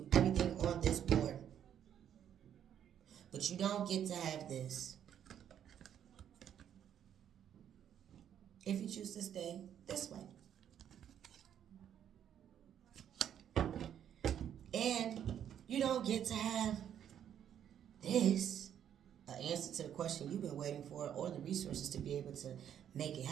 everything on this board. But you don't get to have this. If you choose to stay this way. And you don't get to have this, an answer to the question you've been waiting for, or the resources to be able to make it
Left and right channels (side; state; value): left; quieter; 9.6 dB